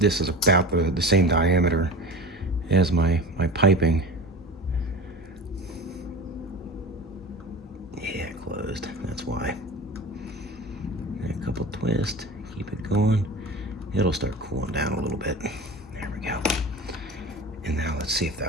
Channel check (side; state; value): both; normal; correlation 0.33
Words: is about the same diameter as my piping. Yeah, closed. That's why. And a couple twists. Keep it going. It'll start cooling down a little bit. There we go. And now let's see if